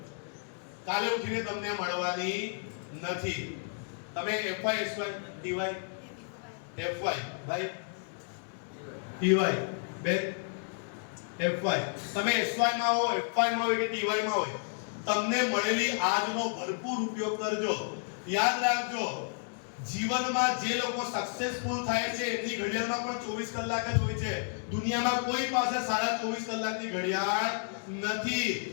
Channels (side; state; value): right; silent; 57 dB below the other